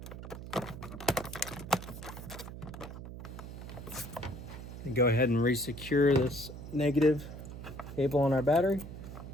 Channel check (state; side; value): noise; right; hum, 11 dB below the sound